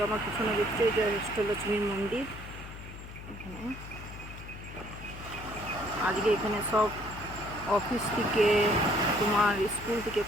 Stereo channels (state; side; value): noise; left; hum, 13 dB below the sound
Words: আমার পিছনে দেখছি এটা অষ্টলক্ষ্মীর মন্দির। এখানে আজকে এখানে সব অফিস থেকে, তোমার স্কুল থেকে,